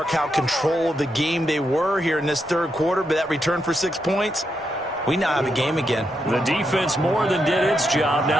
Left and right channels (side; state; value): both; normal; correlation 0.82